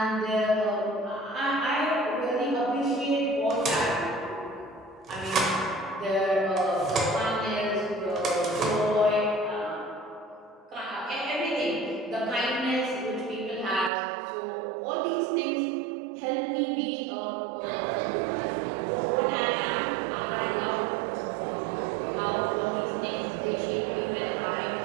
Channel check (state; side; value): drops out; left; at 13.9 s